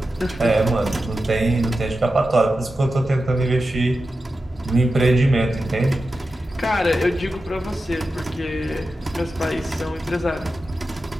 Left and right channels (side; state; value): both; normal; correlation 0.92